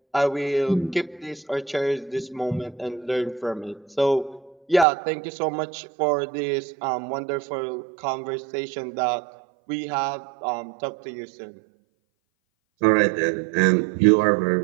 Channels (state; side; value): drops out; left; at 4.9 s